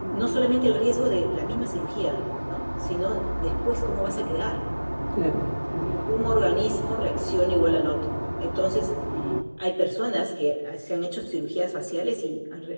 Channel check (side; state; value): both; inverted; correlation -1.00